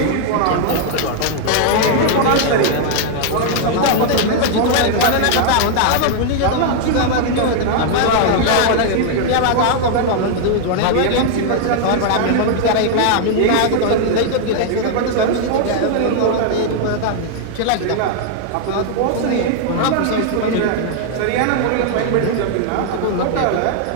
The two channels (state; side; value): different; both; correlation 0.00